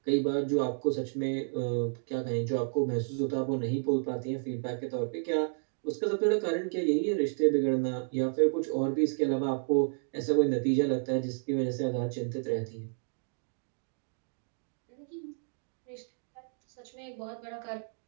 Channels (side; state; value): left; silent; digital silence